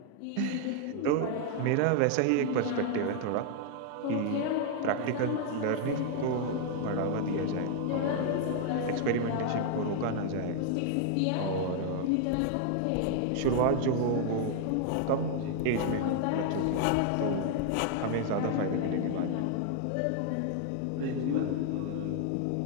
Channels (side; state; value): both; different; correlation 0.00